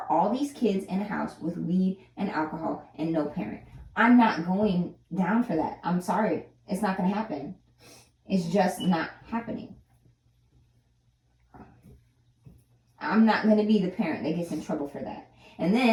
all these kids in a house with weed and alcohol and no parent. I'm not going down for that. I'm sorry. It's not going to happen. It's just not happening. I'm not going to be the parent that gets in trouble for that. And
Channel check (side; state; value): both; identical; correlation 1.00